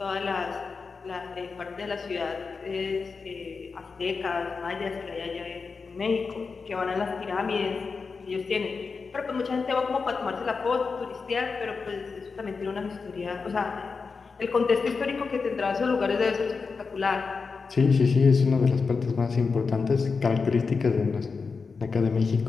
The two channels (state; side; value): quieter; right; 4.8 dB